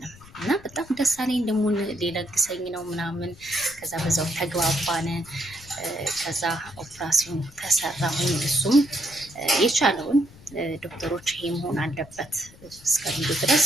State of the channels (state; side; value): noise; left; rumble, 22 dB below the sound